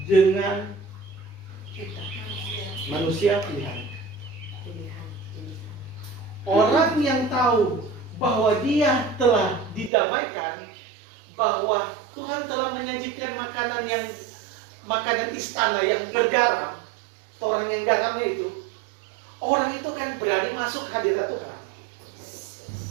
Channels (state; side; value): drops out; left; at 9.9 s